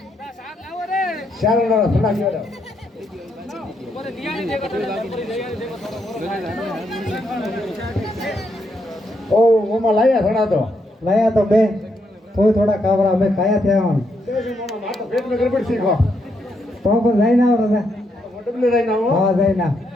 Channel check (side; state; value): both; normal; correlation 0.78